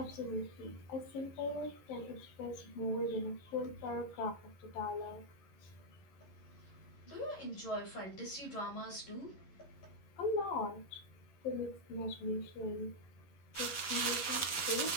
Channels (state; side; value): late; right; 11 ms